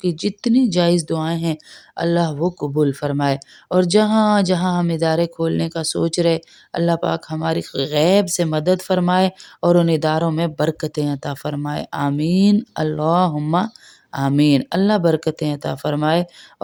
جتنی جائز دعائیں ہیں اللہ وہ قبول فرمائے۔ اور جہاں جہاں ہم ادارے کھولنے کا سوچ رہے اللہ پاک ہماری غیب سے مدد فرمائے اور ان اداروں میں برکتیں عطا فرمائے۔ آمین اللہم آمین۔ اللہ برکتیں عطا فرمائے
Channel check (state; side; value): identical; both; correlation 1.00